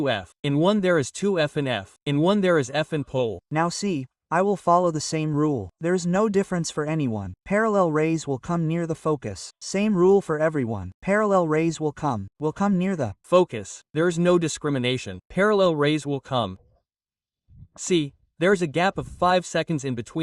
In one there is 2f and f. In one there is f and pole. Now see, I will follow the same rule. There is no difference for anyone. Parallel rays will come near the focus. Same rule for everyone. Parallel rays will come near the focus. There is no discrimination. Parallel rays will come. See, there is a gap of 5 seconds in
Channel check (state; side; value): identical; both; correlation 1.00